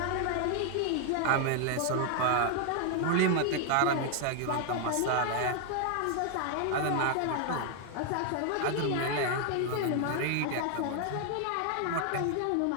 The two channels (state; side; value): different; both; correlation 0.00